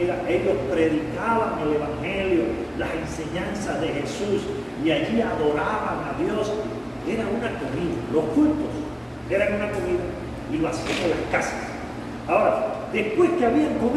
ellos predicaban el Evangelio, las enseñanzas de Jesús, y allí adoraban a Dios. Era una comida, los cultos eran una comida, y lo hacían en las casas. Ahora, después que habían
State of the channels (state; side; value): identical; both; correlation 1.00